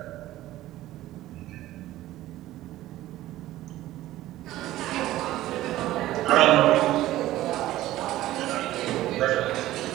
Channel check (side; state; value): left; quieter; 15.2 dB